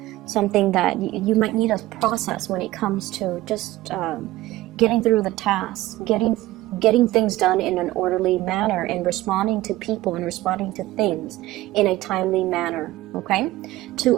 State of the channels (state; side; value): quieter; left; 16.7 dB